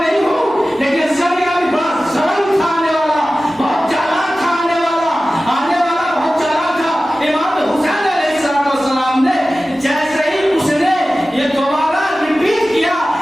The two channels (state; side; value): normal; both; correlation 0.96